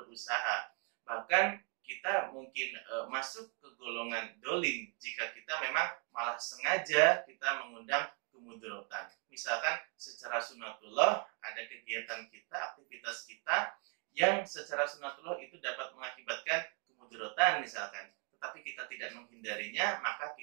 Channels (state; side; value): quieter; left; 37.4 dB